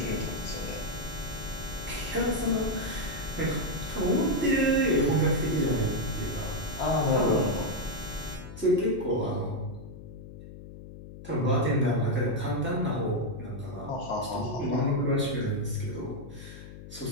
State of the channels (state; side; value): noise; left; hum, 14 dB below the sound